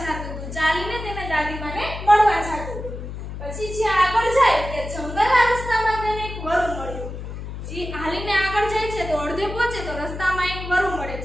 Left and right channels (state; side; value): noise; left; hum, 8 dB below the sound